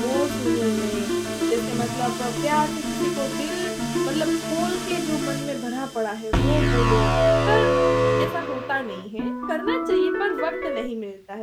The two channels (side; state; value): both; identical; correlation 1.00